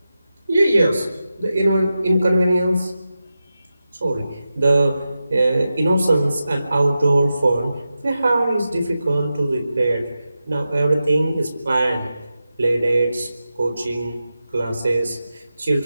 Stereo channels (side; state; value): both; inverted; correlation -0.91